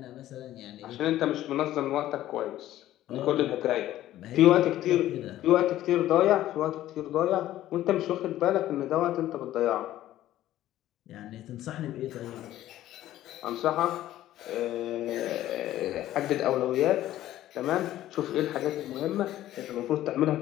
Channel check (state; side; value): quieter; right; 13.8 dB